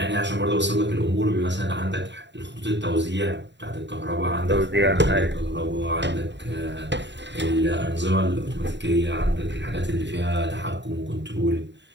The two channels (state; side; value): late; left; 0.52 ms